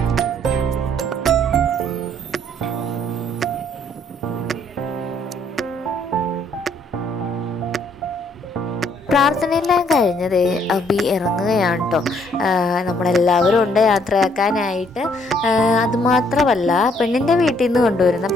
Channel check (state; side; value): normal; both; correlation 0.66